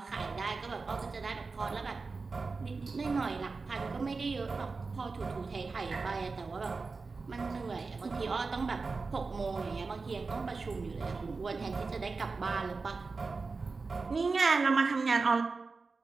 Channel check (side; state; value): left; quieter; 4.2 dB